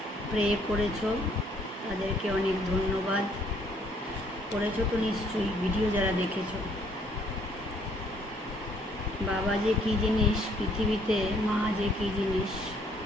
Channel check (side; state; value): both; normal; correlation 0.65